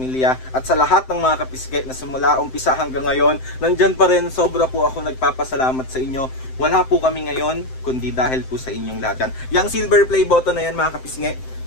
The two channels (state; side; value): late; right; 7.7 ms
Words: At sa lahat ng mga kapisngin na simula umpisa hanggang ngayon, nandyan pa rin, sobra po ako nagpapasalamat sa inyo. Wala po kami ngayon, kundi dahil po sa inyong lahat yan. Yung silver play button na yan mga kapisngin,